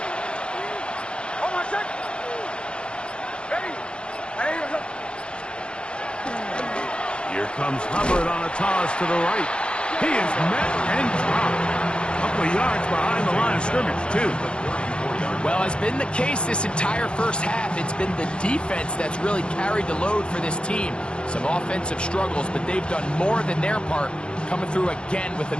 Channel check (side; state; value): right; late; 0.054 ms